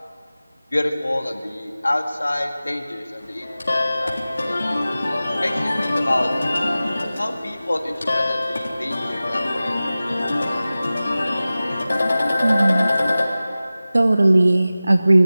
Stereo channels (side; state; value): both; inverted; correlation -0.97